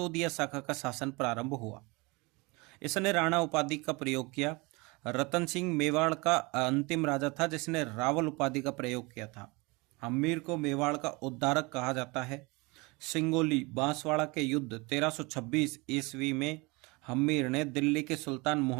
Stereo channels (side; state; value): left; quieter; 26.1 dB